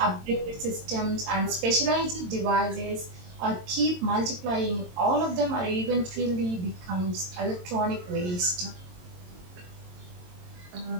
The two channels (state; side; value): late; left; 22 ms